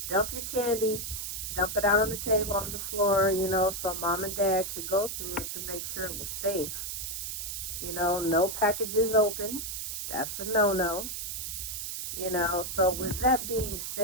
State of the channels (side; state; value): right; noise; hiss, 5 dB below the sound